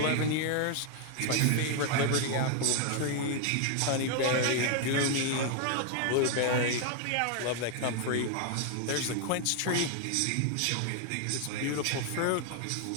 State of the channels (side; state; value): both; different; correlation 0.00